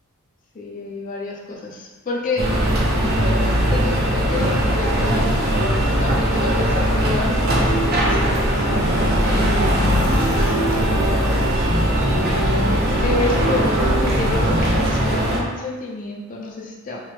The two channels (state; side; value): normal; both; correlation 0.56